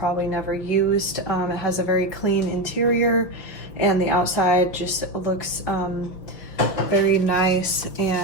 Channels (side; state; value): right; late; 5.5 ms